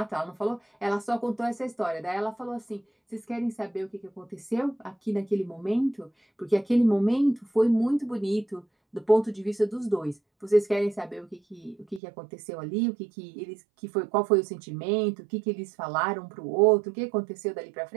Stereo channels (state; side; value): drops out; left; at 12.0 s